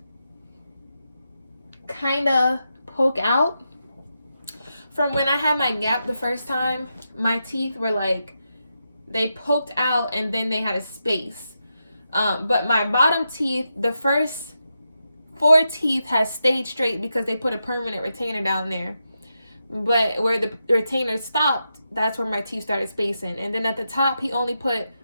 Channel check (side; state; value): both; inverted; correlation -0.87